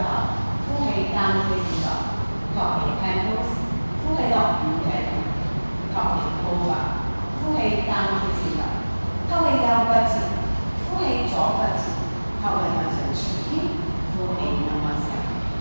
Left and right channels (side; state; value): both; inverted; correlation -1.00